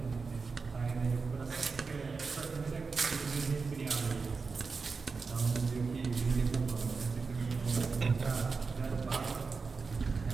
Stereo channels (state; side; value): quieter; left; 4.7 dB